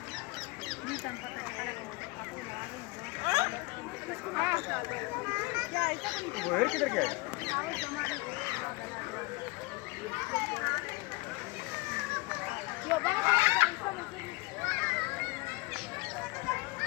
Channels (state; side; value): quieter; right; 24.7 dB